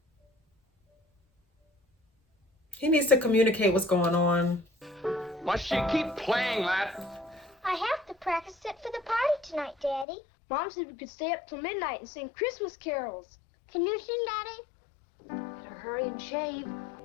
He needs to communicate what's going on. Must she keep playing that? I have to practice it for the party tonight, Daddy. Mom said we could stay up till midnight and sing Christmas carols. Can you sing, Daddy? Better hurry and shave.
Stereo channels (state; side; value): drops out; right; at 10.1 s